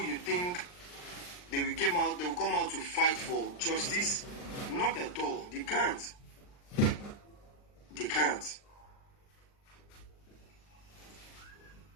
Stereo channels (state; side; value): late; right; 39 ms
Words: you think they will come out to fight for justice? Not at all. They can't. They can't.